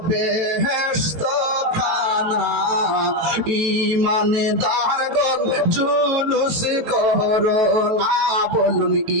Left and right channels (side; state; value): left; late; 18 ms